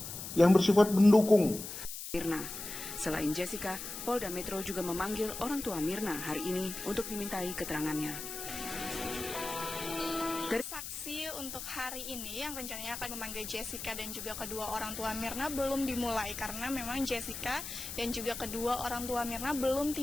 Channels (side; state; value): left; noise; hiss, 8 dB below the sound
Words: yang bersifat mendukung. Mirna. Selain Jessica, Polda Metro juga memanggil orang tua Mirna hari ini untuk dimintai keterangannya. Saksi untuk hari ini yang rencananya akan memanggil Jessica dan juga kedua orang tua Mirna belum dimulai karena memang Jessica dan juga kedua orang tua Mirna belum